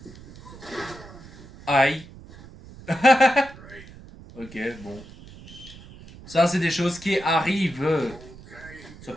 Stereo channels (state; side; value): noise; right; rumble, 18 dB below the sound